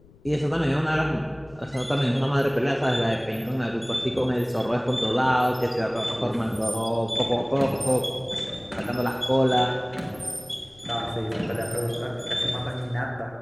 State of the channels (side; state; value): left; noise; rumble, 25 dB below the sound